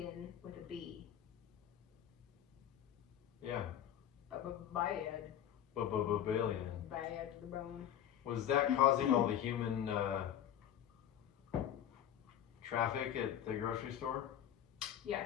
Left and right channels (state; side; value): quieter; right; 10.3 dB